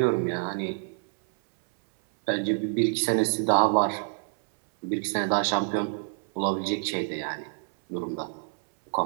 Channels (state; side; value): silent; left; 60 dB below the other